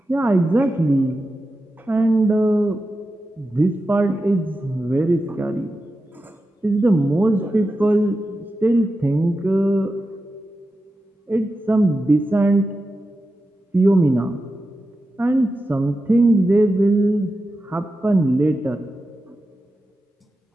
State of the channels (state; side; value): normal; both; correlation 0.91